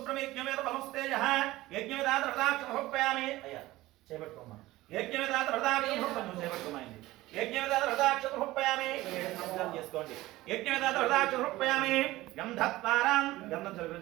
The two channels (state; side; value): quieter; left; 17.7 dB